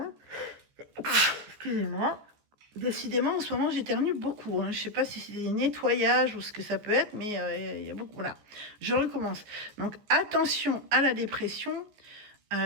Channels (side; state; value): left; late; 14 ms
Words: Excusez-moi. Décidément, en ce moment, j'éternue beaucoup. Hein. Je ne sais pas si c'est des nettoyages ou ce que ça peut être, mais il y a beaucoup. Voilà, je recommence. Donc, attention à la dépression.